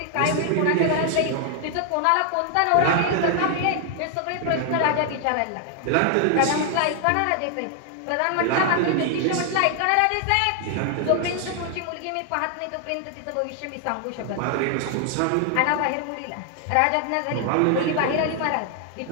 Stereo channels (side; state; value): both; different; correlation 0.00